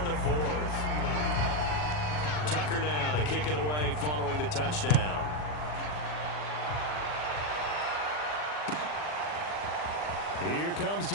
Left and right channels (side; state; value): right; late; 40 ms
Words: the 4th. Tucker now to kick it away following the touchdown. Here comes